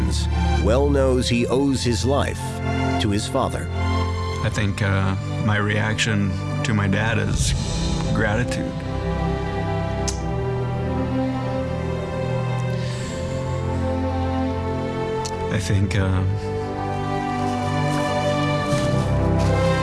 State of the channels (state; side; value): identical; both; correlation 1.00